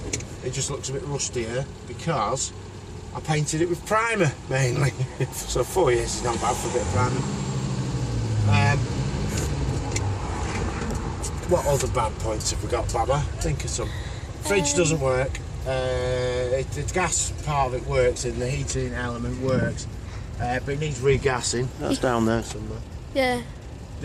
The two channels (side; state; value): both; identical; correlation 1.00